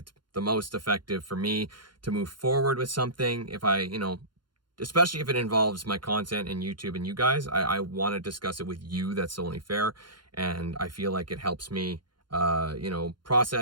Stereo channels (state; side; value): late; left; 0.71 ms